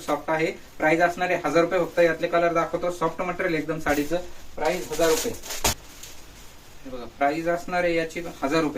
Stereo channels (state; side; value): identical; both; correlation 1.00